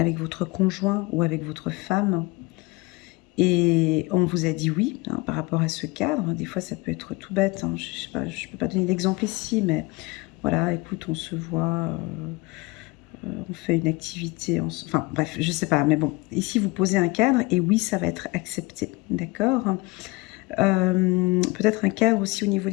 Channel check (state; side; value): quieter; right; 23.7 dB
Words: votre conjoint ou avec votre femme et on vous a dit oui hein, par rapport à ce cadre. Des fois, ça peut être tout bête. Hein. Je sais pas, je ne peux pas donner d'exemple ici, mais voilà, écoute, on se voit, on fait une activité. Enfin, bref, je ne sais pas. Mais bon, ici, vous posez un cadre et oui, ça va être accepté. D'accord? Peut-être un cadre aussi au niveau